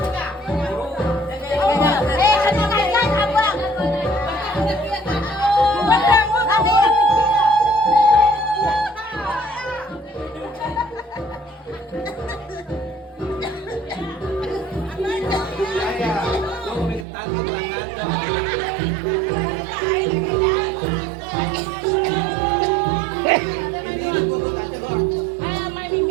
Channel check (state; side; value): drops out; left; at 17.1 s